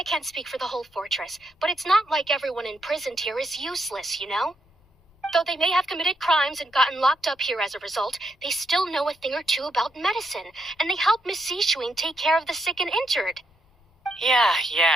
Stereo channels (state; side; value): normal; both; correlation 0.79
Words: can't speak for the whole fortress, but it's not like everyone imprisoned here is useless, you know? Though they may have committed crimes and gotten locked up here as a result, they still know a thing or two about medicine, and they help Miss Sijuin take care of the sick and injured. Yeah,